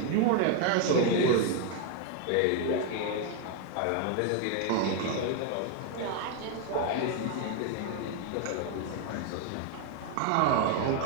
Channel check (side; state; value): both; different; correlation 0.01